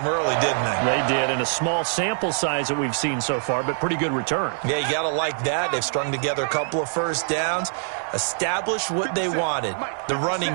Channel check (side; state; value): left; silent; digital silence